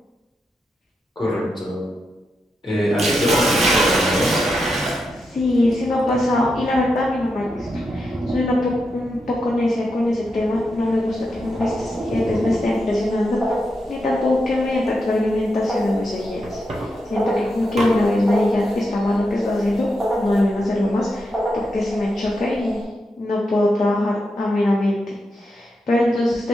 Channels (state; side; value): normal; both; correlation 0.86